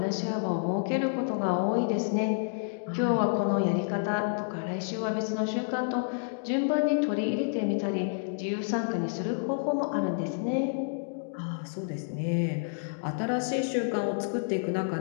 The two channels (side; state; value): right; silent; digital silence